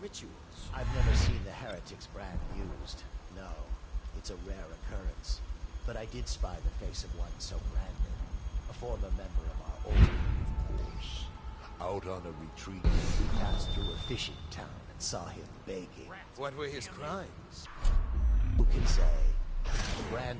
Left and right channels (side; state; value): both; identical; correlation 1.00